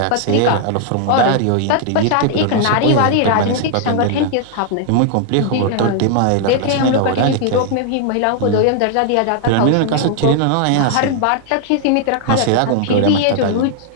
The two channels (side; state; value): both; different; correlation 0.00